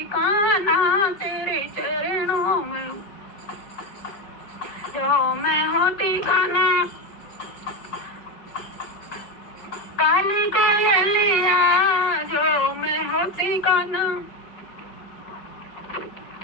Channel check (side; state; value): right; late; 5.0 ms